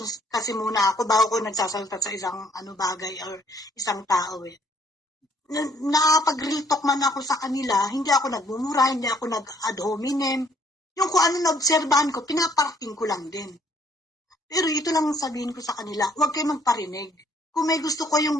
kasi muna ako bago ko nagsasalita sa isang bagay or isang tao eh. Nakapag-real talk man ako sa kanila, hindi ako nagmumura, hindi ako nag-ad hominem. Yung kung ano na-obserbahan ko, pinaparting ko lang din. Pero ito lang sabihin ko sa kanila, huwag kayo magparinig. Kung may gusto ko yung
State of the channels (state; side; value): normal; both; correlation 0.64